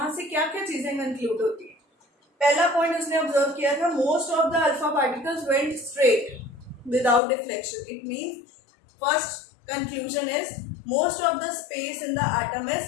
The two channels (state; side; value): drops out; right; at 7.2 s